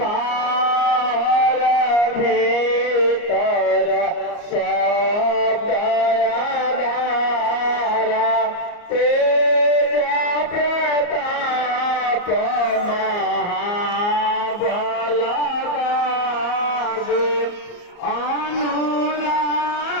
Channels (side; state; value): right; late; 34 ms